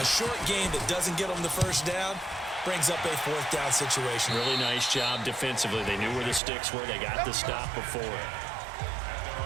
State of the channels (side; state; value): left; drops out; at 6.4 s